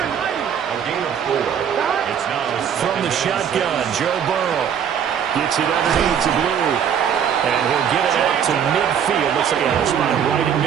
gain of 4. It's now from the shotgun, Joe Burrow gets it underneath to Blue. And he'll get it out to midfield. Looks like a spot right in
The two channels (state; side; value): quieter; left; 8.3 dB